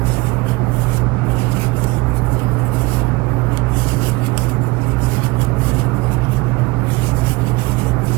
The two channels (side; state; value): left; quieter; 23.0 dB